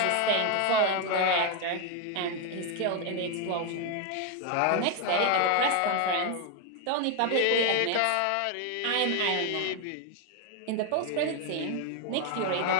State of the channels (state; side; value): different; both; correlation 0.01